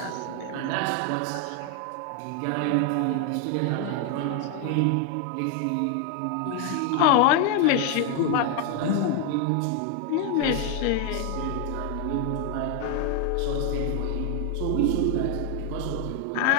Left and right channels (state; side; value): different; both; correlation 0.01